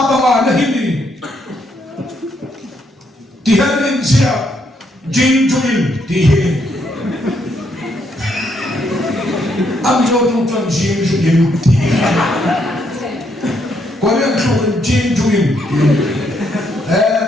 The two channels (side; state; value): both; normal; correlation 0.74